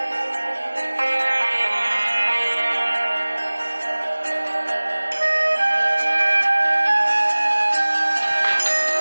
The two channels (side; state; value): both; inverted; correlation -1.00